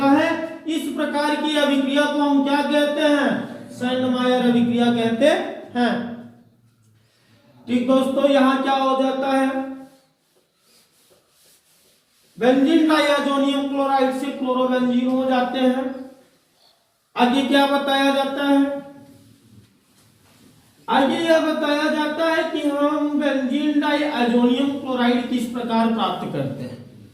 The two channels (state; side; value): identical; both; correlation 1.00